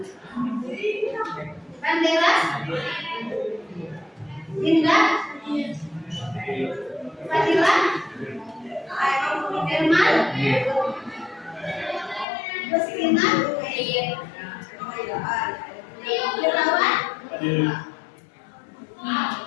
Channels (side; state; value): right; drops out; at 12.2 s